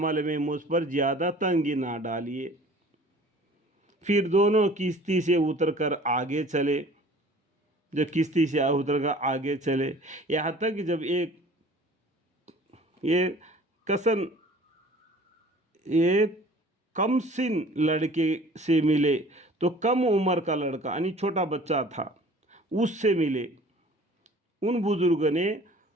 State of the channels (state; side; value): normal; both; correlation 0.48